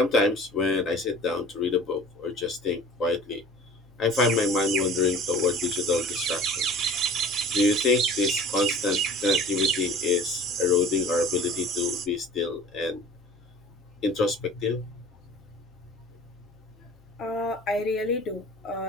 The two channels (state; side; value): noise; left; hum, 28 dB below the sound